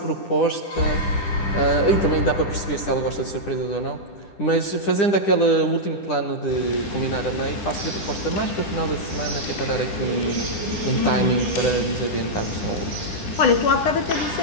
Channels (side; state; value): right; late; 10 ms